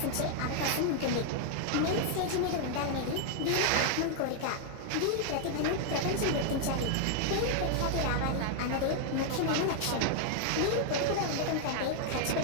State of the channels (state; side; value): different; both; correlation 0.00